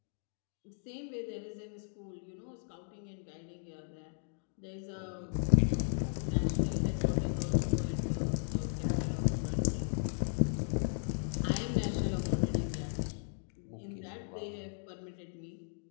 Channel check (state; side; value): silent; right; digital silence